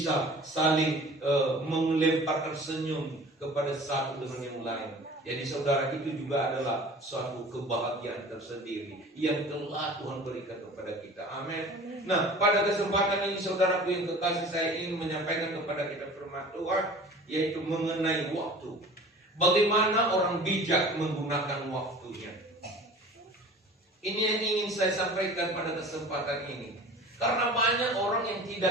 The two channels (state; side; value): normal; both; correlation 0.42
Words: saling melemparkan senyum kepada satu dengan yang lain. Jadi saudara, itu juga adalah suatu kebahagiaan tersendiri yang telah Tuhan berikan kepada kita. Amin. Nah, pada kesempatan ini saudaraku yang kekasih, saya ingin menyampaikan kepada kita firman Tuhan, yaitu mengenai waktu. Bagaimana orang bijak menggunakan waktunya. Ini yang ingin saya sampaikan pada kesempatan ini. Karena banyak orang yang